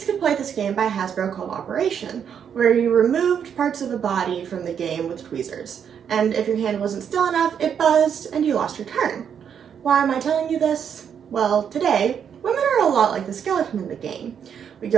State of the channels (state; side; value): quieter; left; 7.9 dB